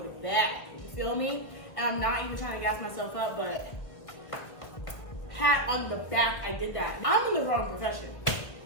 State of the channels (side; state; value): right; late; 1.6 ms